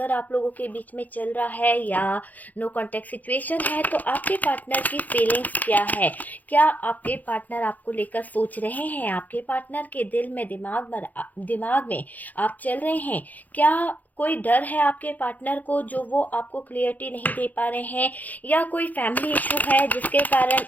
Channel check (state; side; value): late; right; 0.081 ms